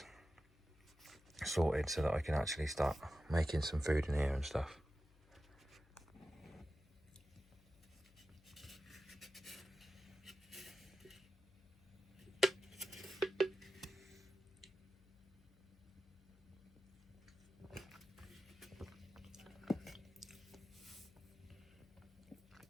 sorted so that I can actually start making some food in here and stuff.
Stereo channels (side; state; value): left; noise; hum, 26 dB below the sound